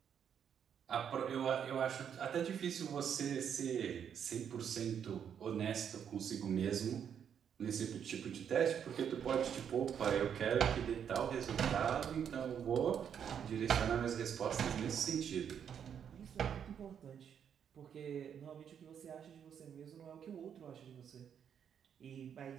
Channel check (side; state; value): left; quieter; 8.2 dB